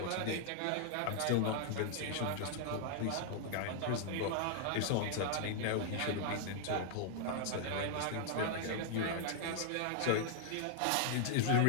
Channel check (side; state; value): both; different; correlation 0.00